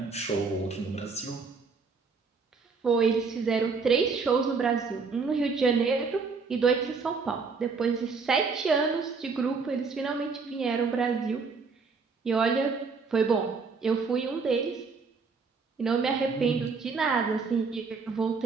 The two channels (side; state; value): left; quieter; 4.8 dB